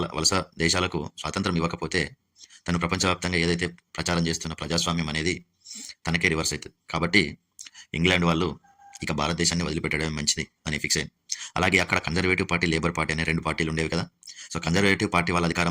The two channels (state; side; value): identical; both; correlation 1.00